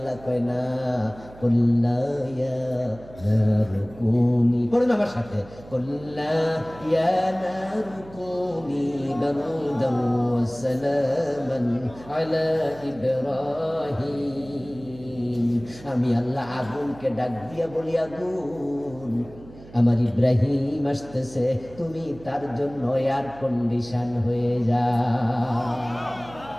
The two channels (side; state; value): right; noise; hum, 19 dB below the sound